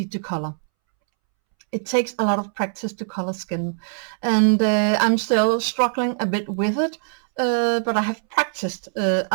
to color. It takes a lot of practice to color skin, and I'm still struggling a bit with it, but I have practiced a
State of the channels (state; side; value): silent; left; 64 dB below the other